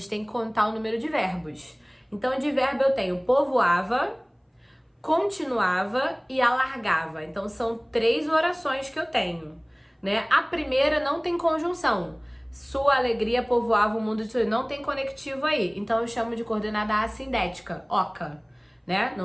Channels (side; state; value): both; identical; correlation 1.00